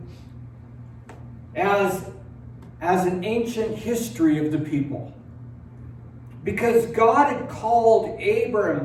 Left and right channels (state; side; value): identical; both; correlation 1.00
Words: as an ancient history of the people. Because God had called